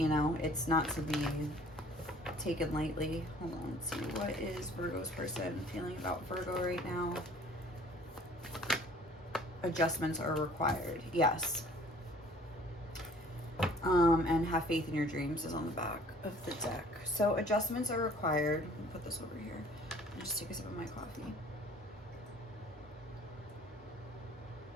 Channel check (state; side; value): normal; both; correlation 0.53